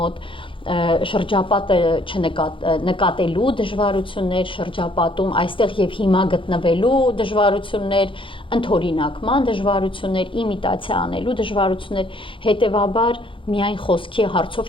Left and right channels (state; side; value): late; right; 0.25 ms